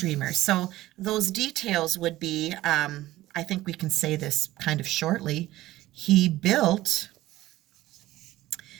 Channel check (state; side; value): quieter; left; 16.3 dB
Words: So those details would be, I think we can say this kind of shortly. He built